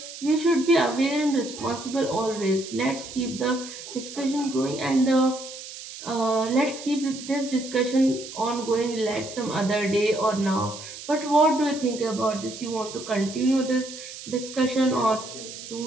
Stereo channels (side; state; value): right; noise; hiss, 12 dB below the sound